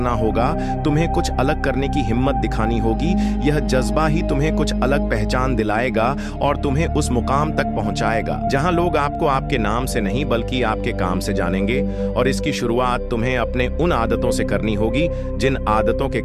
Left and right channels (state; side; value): identical; both; correlation 1.00